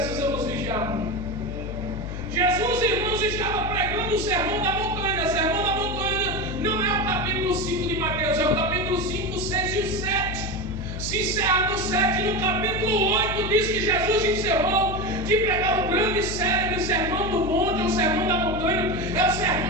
vigiar muito. Jesus, irmãos, estava pregando o sermão da montanha. O sermão da montanha não é o capítulo 5 de Mateus, é o capítulo 5, 6 e 7. Se encerra no 7, no capítulo 8 diz que Jesus encerrou de pregar o grande e célebre sermão do monte, ou sermão da montanha. É o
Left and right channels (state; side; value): noise; left; hum, 6 dB below the sound